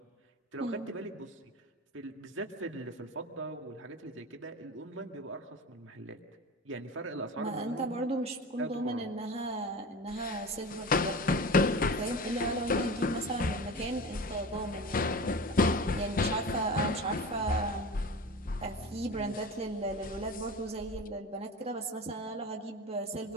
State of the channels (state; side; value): normal; both; correlation 0.31